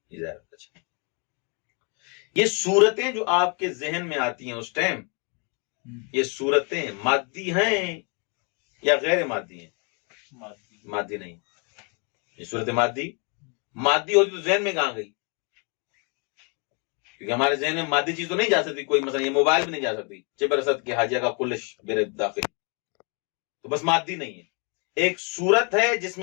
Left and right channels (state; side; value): quieter; right; 35.3 dB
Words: کی زیارت۔ اچھا، یہ صورتیں جو آپ کے ذہن میں آتی ہیں اس ٹائم، یہ صورتیں مادی ہیں یا غیر مادی ہیں؟ مادی نہیں، یہ صورت مادی ہوتی تو ذہن میں کہاں گئی؟ کیونکہ ہمارے ذہن میں مادی چیز تو نہیں جا سکتی، کوئی مثلا یہ موبائل بھی نہیں جا سکتی، چبرست کے حاجیہ کا کلش میرے داخل، تو بس مادی نہیں ہے، ایک صورت ہے جس